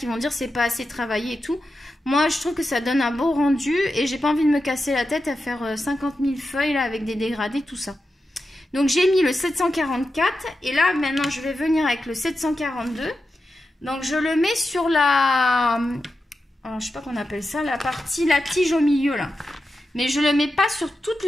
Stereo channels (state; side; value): normal; both; correlation 0.89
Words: vont dire c'est pas assez travaillé et tout. Moi, je trouve que ça donne un beau rendu et j'ai pas envie de me casser la tête à faire 50 000 feuilles là, avec des dégradés, tout ça. Donc, j'ai mis le 744 et là, maintenant, je vais venir avec le 742. Donc, je le mets sur la... alors je sais pas qu'on appelle ça, la tige au milieu là. Mais je le mets pas sur toute